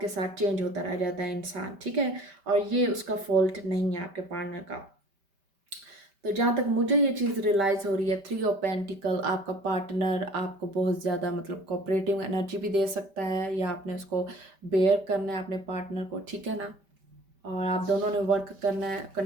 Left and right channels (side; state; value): left; late; 5.1 ms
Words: के साथ चेंज होता रह जाता है इंसान, ठीक है। और ये उसका फॉल्ट नहीं है आपके पार्टनर का। तो जहाँ तक मुझे ये चीज़ रियलाइज़ हो रही है, थ्री ऑफ पेंटिकल, आपका पार्टनर आपको बहुत ज़्यादा मतलब कोऑपरेटिव एनर्जी भी दे सकता है, या आपने उसको बेयर करना है अपने पार्टनर को, ठीक है ना। और आप दोनों ने वर्क करना है,